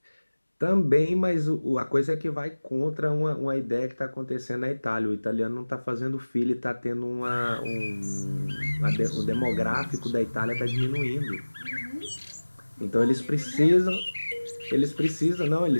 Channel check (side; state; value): both; inverted; correlation -1.00